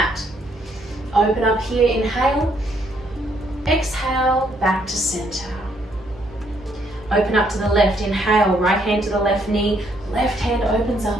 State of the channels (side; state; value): both; normal; correlation 0.70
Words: Open up here, inhale. Exhale, back to center. Open up to the left, inhale, right hand to the left knee, left hand opens